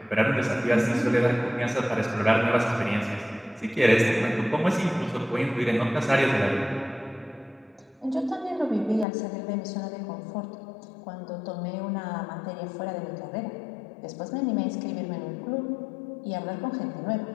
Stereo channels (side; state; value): right; drops out; at 9.1 s